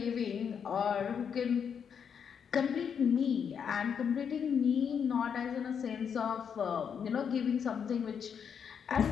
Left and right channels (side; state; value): right; quieter; 7.3 dB